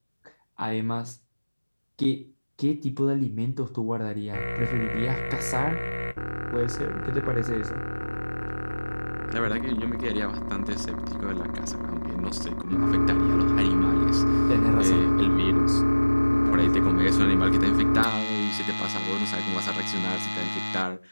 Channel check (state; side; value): inverted; both; correlation -1.00